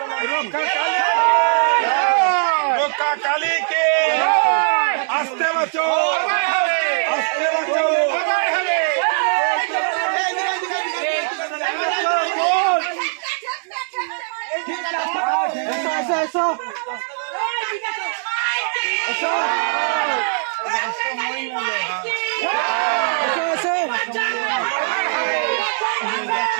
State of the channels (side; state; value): left; silent; digital silence